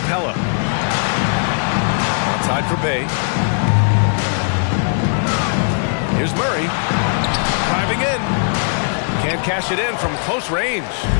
Outside for Bay. Here's Murray. Driving in. Can't cash it in from close range.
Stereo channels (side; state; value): right; silent; 67 dB below the other